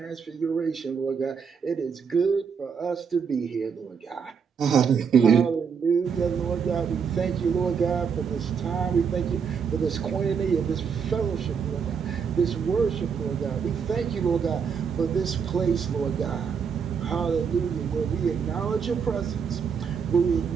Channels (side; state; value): left; quieter; 6.5 dB